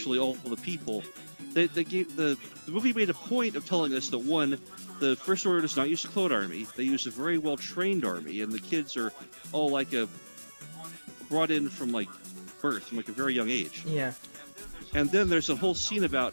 all the people... The movie made a point of telling us that, one, the First Order does not use a clone army. They use a very well-trained army, and the kids are all, like, brought in from, like, birth, from, like, a very young age. Yeah. And then there's a whole scene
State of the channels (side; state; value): both; inverted; correlation -1.00